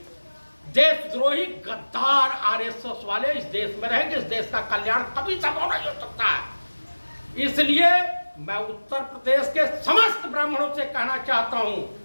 देशद्रोही गद्दार आरएसएस वाले इस देश में रहेंगे, इस देश का कल्याण कभी संभव नहीं हो सकता है। इसलिए मैं उत्तर प्रदेश के समस्त ब्राह्मणों से कहना चाहता हूं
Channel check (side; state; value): both; inverted; correlation -1.00